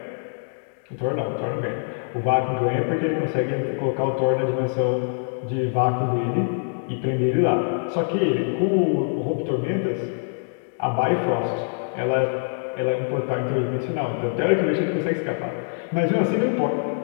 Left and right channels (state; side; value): silent; right; digital silence